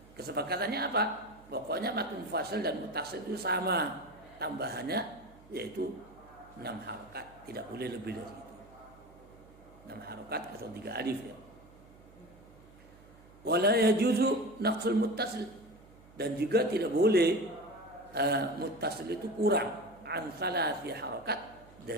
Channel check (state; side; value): noise; right; hum, 23 dB below the sound